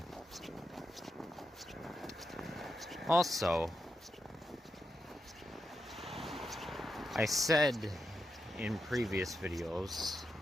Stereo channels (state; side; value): normal; both; correlation 0.86